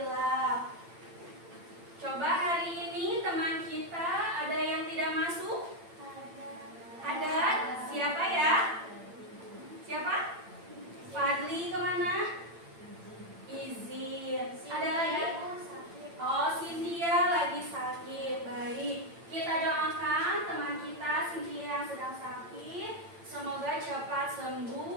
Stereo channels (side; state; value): left; late; 8.8 ms